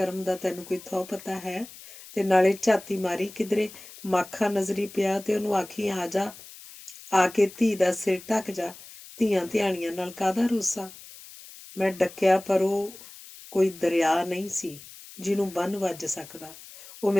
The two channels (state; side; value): noise; left; hiss, 18 dB below the sound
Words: ਦਾ ਤੈਨੂੰ ਕੋਈ ਥਹੁ ਪਤਾ ਹੈ? ਤੇ ਨਾਲੇ ਝਾਤੀ ਮਾਰੀ ਕਿਧਰੇ ਮਾਖਾ ਨਜ਼ਰੀ ਪਿਆ ਤੇ ਉਹਨੂੰ ਆਖੀ, ਆ ਜਾ, ਆ ਕੇ ਧੀ ਦਾ ਸਿਰ ਢੱਕ ਜਾ। ਧੀਆਂ ਧਿਆਣੀਆਂ ਨਾਲ ਕਾਹਦਾ ਰੋਸਾ। ਮੈਂ ਡੱਕਿਆ, ਪਰ ਉਹ ਕੋਈ ਦਰਿਆ ਨਹੀਂ ਸੀ ਜਿਹਨੂੰ ਬੰਨ੍ਹ ਵੱਜ ਸਕਦਾ। ਉਹ